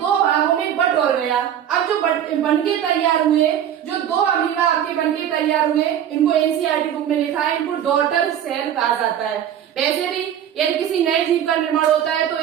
भागों में बट हो गया। अब जो बनके तैयार हुए, जो दो अमीबा आपके बनके तैयार हुए, इनको एनसीईआरटी बुक में लिखा है, इनको डॉटर सेल कहा जाता है। वैसे भी यदि किसी नए जीव का निर्माण होता है तो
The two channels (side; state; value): left; quieter; 10.0 dB